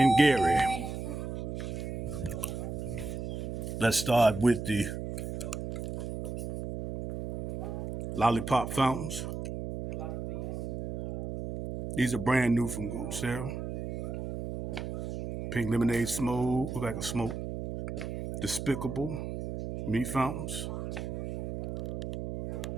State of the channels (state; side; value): noise; right; hum, 5 dB below the sound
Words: Gary. Let's start with the lollipop fountains. These are brand new from Sarah. Pink lemonade smoke, look like a smoke. Despicable meat fountains.